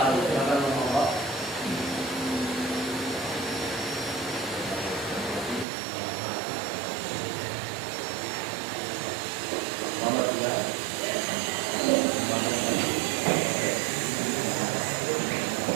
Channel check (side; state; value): left; drops out; at 5.7 s